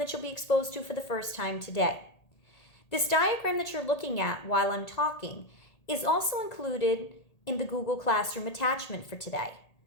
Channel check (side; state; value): right; late; 1.8 ms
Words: you'll be exposed to for the first time today. This diagram that you're looking at while I'm talking is also included in the Google Classroom attachment for today.